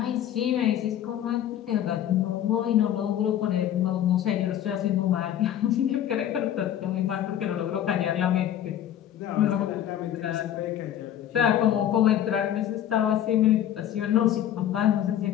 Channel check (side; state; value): right; quieter; 10.9 dB